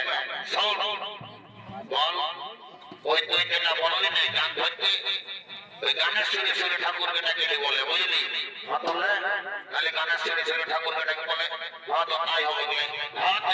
শোন বল ওই তুই যেটা বললি না গান ধরতে ওই গানের সুরে সুরে ঠাকুর বেটাকে বলে বুঝলি তাহলে গানের সুরে সুরে ঠাকুর বেটাকে বলে হ্যাঁ তো তাই হবে হ্যাঁ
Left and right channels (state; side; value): identical; both; correlation 1.00